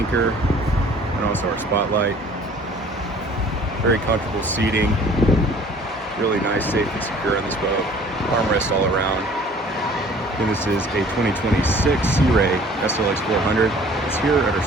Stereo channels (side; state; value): both; normal; correlation 0.52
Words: and also our spotlight. Very comfortable seating. Really nice, safe and secure on this boat. Armrest all around. And this is a 2026 Sea Ray SLX 400. It's here at our